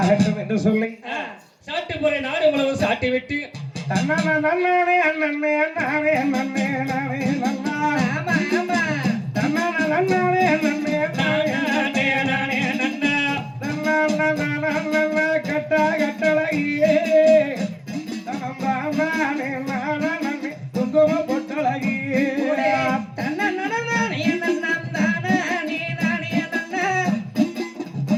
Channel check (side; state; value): both; identical; correlation 1.00